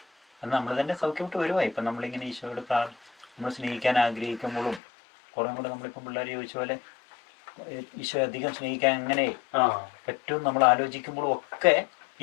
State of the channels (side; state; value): right; drops out; at 4.8 s